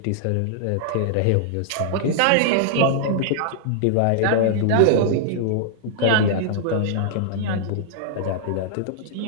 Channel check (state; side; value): different; both; correlation -0.01